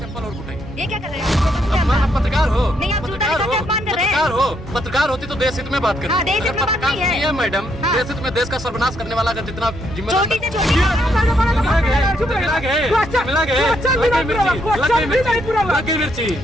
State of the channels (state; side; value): normal; both; correlation 0.74